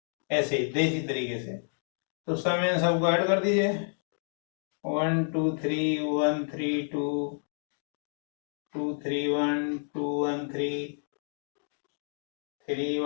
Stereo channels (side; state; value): right; silent; digital silence